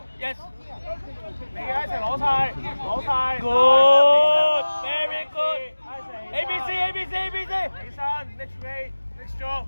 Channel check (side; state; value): both; inverted; correlation -1.00